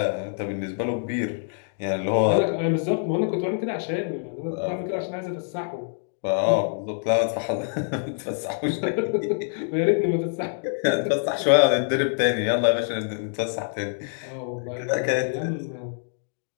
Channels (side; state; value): right; silent; digital silence